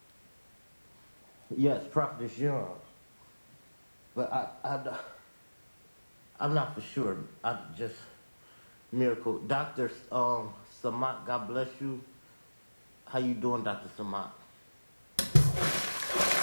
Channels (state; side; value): inverted; both; correlation -1.00